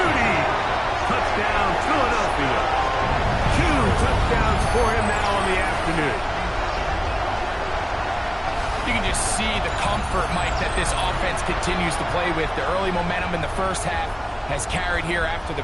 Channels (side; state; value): both; identical; correlation 1.00